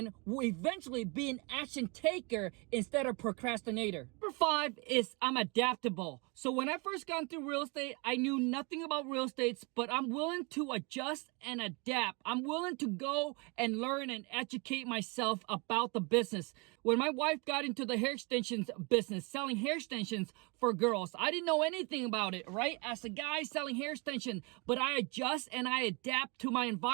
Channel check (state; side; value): quieter; left; 29.9 dB